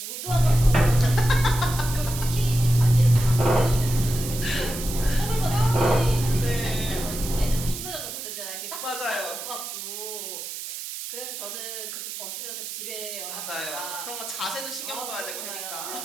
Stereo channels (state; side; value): noise; right; hiss, 8 dB below the sound